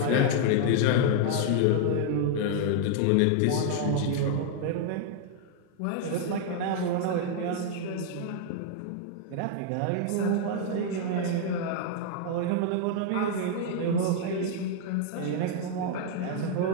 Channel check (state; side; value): different; both; correlation 0.00